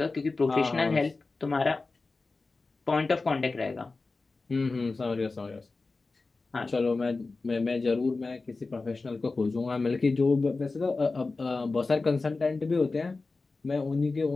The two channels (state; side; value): quieter; right; 3.7 dB